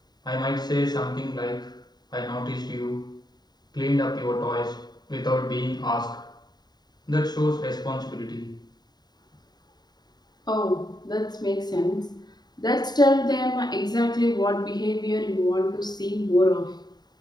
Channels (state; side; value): late; right; 0.20 ms